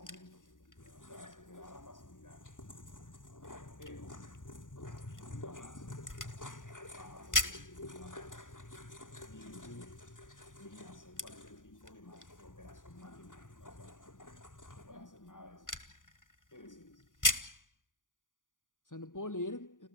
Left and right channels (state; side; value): late; right; 0.88 ms